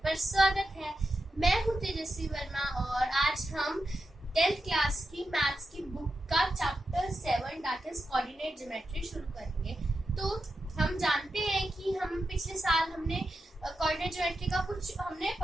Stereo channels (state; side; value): normal; both; correlation 0.89